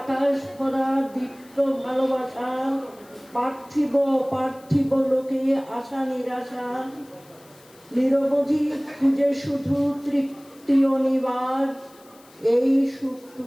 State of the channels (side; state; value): left; noise; hiss, 27 dB below the sound